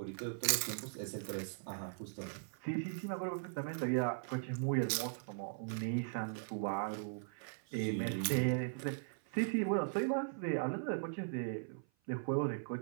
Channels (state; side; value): silent; left; 52 dB below the other